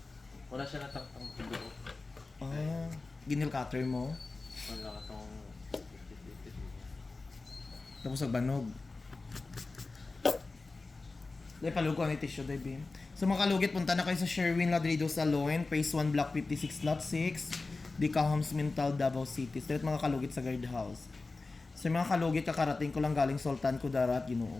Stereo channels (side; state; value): right; quieter; 3.6 dB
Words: Wala siya natang-tang tubo. Ah, ginil cutter mo. Wala ka tong 50-50. Tapos nagbanog. Dahil palugo ang tissue, dahil Bim. So mga kalugit, punta na kayo sa Sherwin Ladrido Salon, Phase 1, Block 56, Lot 6, Dicahams, Mintal, Davao City. Straight mga kalugit sa guardhouse. So mga kalugit, kakarating ko lang galing Sultan Kudarat. Ginoo